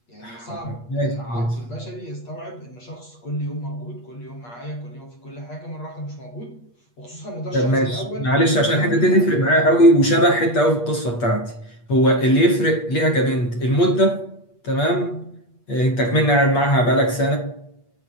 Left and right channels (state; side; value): late; right; 8.4 ms